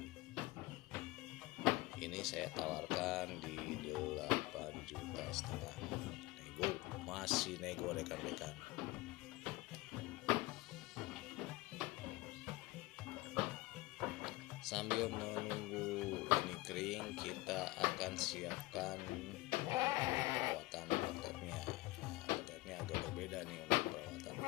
Ini saya tawarkan di 8,5 juta. Nego, masih nego rekan-rekan. Sambil menunggu ini kering, kita akan siapkan perawatan ototnya. Nah, ototnya agak berbeda nih untuk perawatan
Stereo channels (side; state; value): right; quieter; 20.9 dB